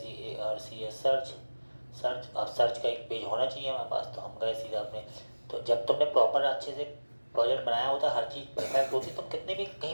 search. अब सर्च का एक पेज होना चाहिए हमारे पास, तो हम गए सीधा अपने। तो जब तुमने प्रॉपर अच्छे से प्रोजेक्ट बनाया होता है, हर चीज़ परफेक्ट होती, तुम कितने भी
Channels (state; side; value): inverted; both; correlation -1.00